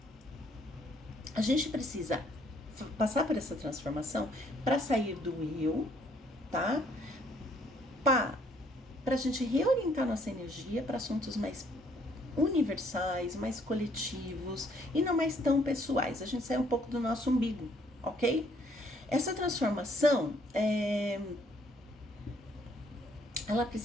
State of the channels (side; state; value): both; normal; correlation 0.65